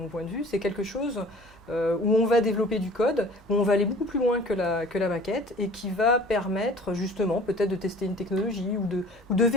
point de vue, c'est quelque chose où on va développer du code, où on va aller beaucoup plus loin que la maquette et qui va permettre justement peut-être de tester une technologie ou de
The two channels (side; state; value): both; normal; correlation 0.46